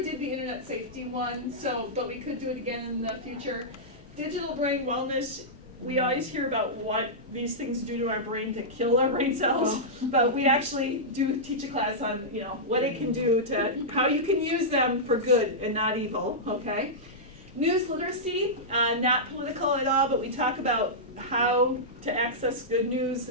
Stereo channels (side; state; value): both; normal; correlation -0.12